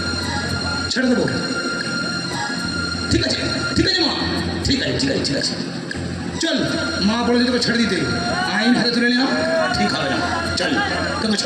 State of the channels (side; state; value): both; identical; correlation 1.00